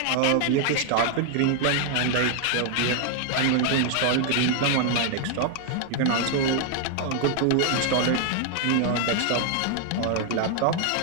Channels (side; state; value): both; different; correlation 0.00